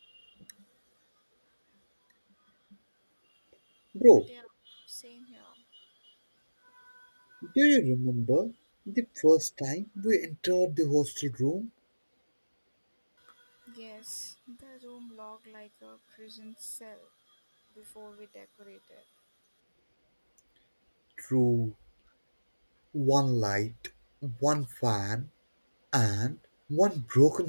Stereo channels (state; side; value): inverted; both; correlation -1.00